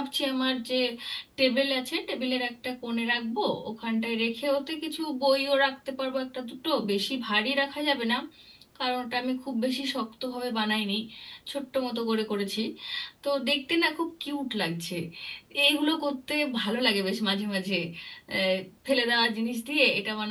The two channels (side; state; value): both; identical; correlation 1.00